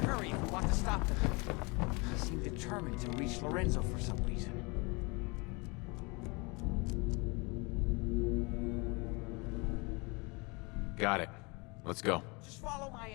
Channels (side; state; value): right; quieter; 28.4 dB